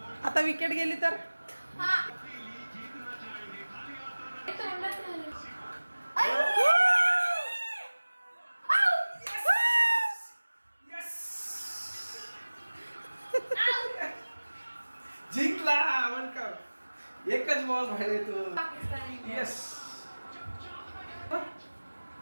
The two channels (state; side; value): inverted; both; correlation -1.00